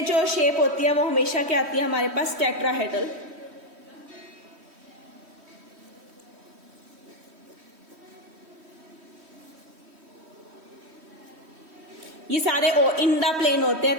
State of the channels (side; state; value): left; late; 3.1 ms